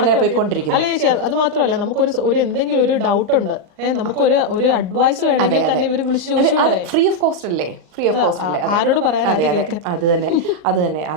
പോയിക്കൊണ്ടിരിക്കും. അല്ല ചേച്ചി, അത് മാത്രമല്ല, നമുക്കൊരു എന്തെങ്കിലും ഒരു ഡൗട്ട് ഉണ്ട്, നമുക്കൊരു അഡ്വൈസ് വേണമെങ്കിൽ തന്നെ ഇവര് വിളിച്ച് ചോദിച്ചു, ഫ്രീ ഓഫ് കോസ്റ്റ് അല്ലേ? ആരോട് പറയാൻ? അത് തന്നെ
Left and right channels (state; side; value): late; left; 39 ms